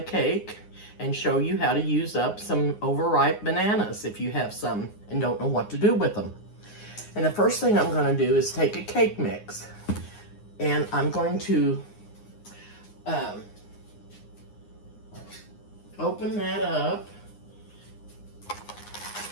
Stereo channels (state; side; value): late; right; 9.7 ms